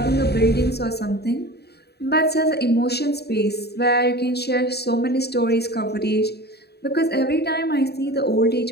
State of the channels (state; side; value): late; right; 0.48 ms